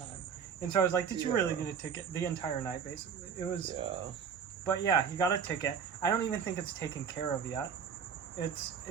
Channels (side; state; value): left; quieter; 6.9 dB